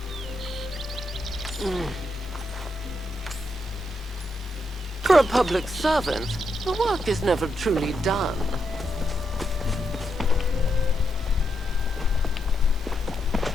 for a public servant, the work is never truly done.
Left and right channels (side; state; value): both; normal; correlation 0.82